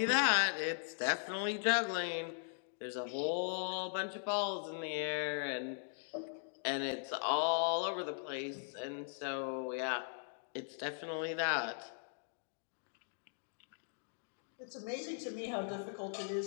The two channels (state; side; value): silent; right; digital silence